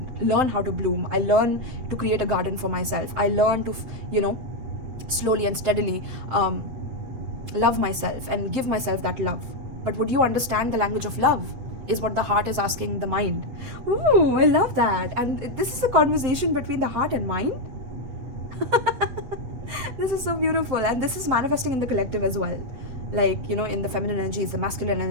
learn how to bloom. I learn to create a garden for myself. I learn to, slowly and steadily love myself and give myself that love. But would you understand the language of love? Is what the heart is asking the mind. Ooh, I love that. And this is a conversation between the heart and mind. This is so beautiful, and this is manifesting in the collective as well, like in the feminine energies, the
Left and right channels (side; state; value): left; late; 8.2 ms